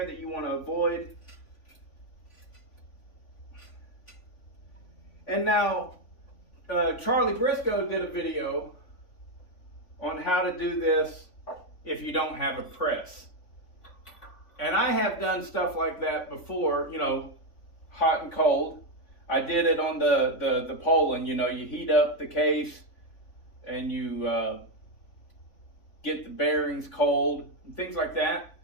that you want to avoid. And now, Charlie Briscoe did a video on how to do this if you don't have a press. And I have done stuff like that before, you know, hot and cold. I did it on the Poland, you know, you heat up the case and you get the bearings cold and things like that.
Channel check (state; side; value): late; right; 3.5 ms